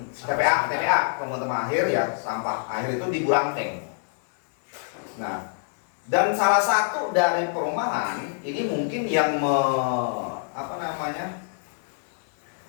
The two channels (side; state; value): right; silent; digital silence